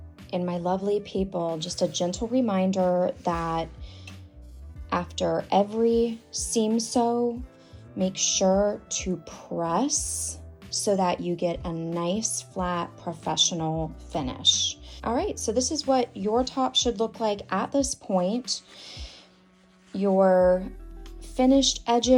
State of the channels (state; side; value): identical; both; correlation 1.00